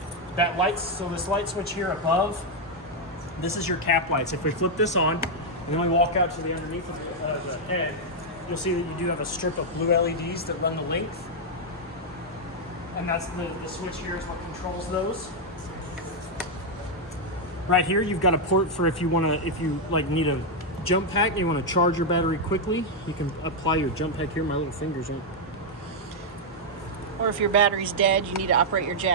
So this light switch here above, this is your cap lights. If we flip this on, and then we walk out to the underneath of the head, you'll see that you do have a strip of blue LEDs that run the length. And that's the switch here is what controls those. Right here, you've got a port for if you need a jump pack and you want to charge your battery quickly, you can apply your jump pack here. My little fingers aren't. Or if your battery's dead, you need to operate your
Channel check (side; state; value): both; normal; correlation -0.01